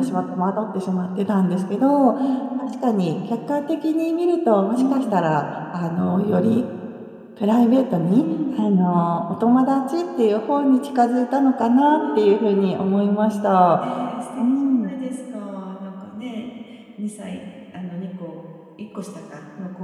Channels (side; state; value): both; identical; correlation 1.00